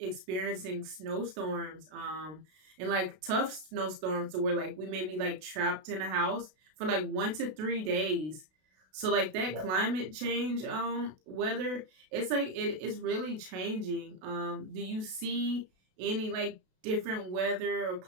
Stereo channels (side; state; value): left; late; 32 ms